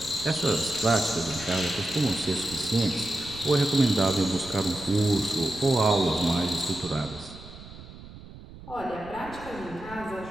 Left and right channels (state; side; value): noise; right; rumble, 16 dB below the sound